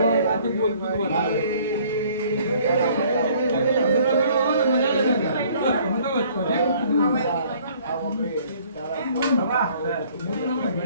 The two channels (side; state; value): both; inverted; correlation -0.57